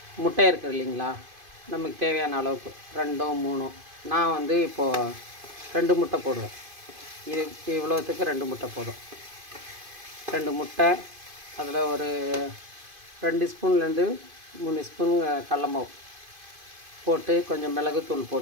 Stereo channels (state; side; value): late; left; 2.5 ms